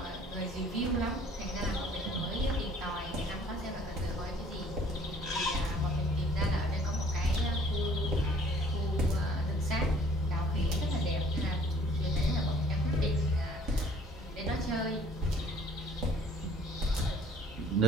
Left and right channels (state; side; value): normal; both; correlation 0.56